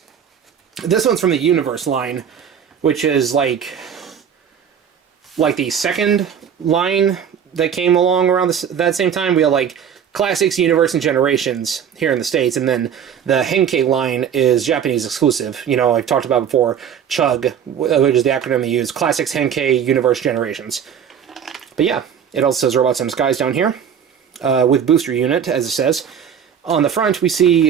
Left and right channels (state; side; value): quieter; left; 8.2 dB